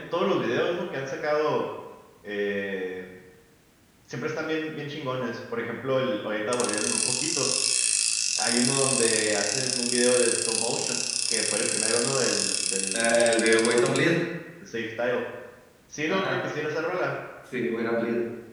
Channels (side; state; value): both; identical; correlation 1.00